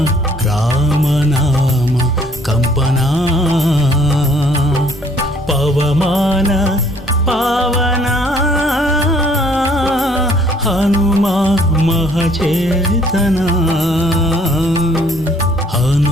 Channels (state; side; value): normal; both; correlation 0.61